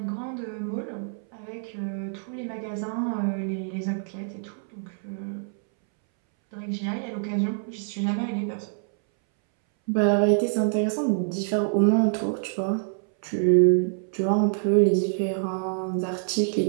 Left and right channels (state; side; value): silent; left; 61 dB below the other